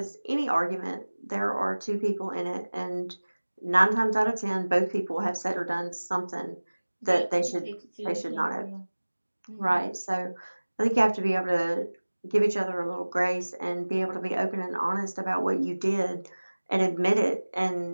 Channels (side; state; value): both; inverted; correlation -1.00